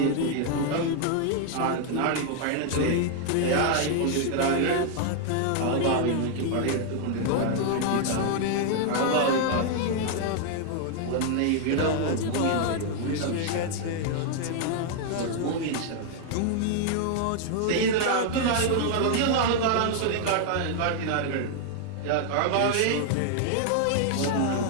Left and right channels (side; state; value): both; different; correlation 0.00